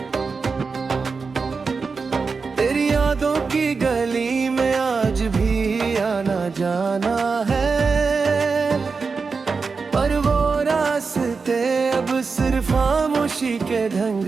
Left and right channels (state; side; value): quieter; left; 4.8 dB